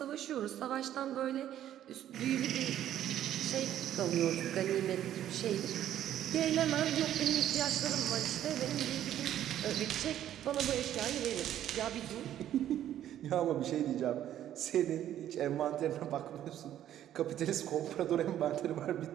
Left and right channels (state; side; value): quieter; left; 11.5 dB